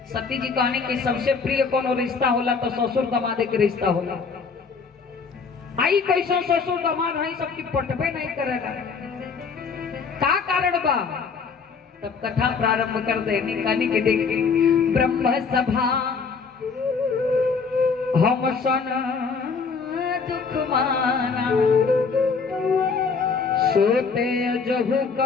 सती जी कहने की सबसे प्रिय कोनो रिश्ता होला तो ससुर दमादे के रिश्ता होला। आई कैसा ससुर दमाद है सबकी पटबे नहीं करेगा, का कारण बा? तब कथा प्रारंभ कर देनी कहनी के देखी ब्रह्म सभा हम सन दुख माना सोते जहु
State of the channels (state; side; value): quieter; right; 5.2 dB